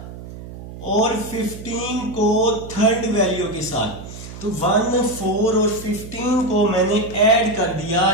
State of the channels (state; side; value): noise; right; hum, 13 dB below the sound